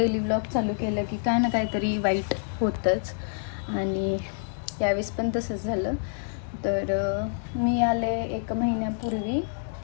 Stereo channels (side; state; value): right; silent; digital silence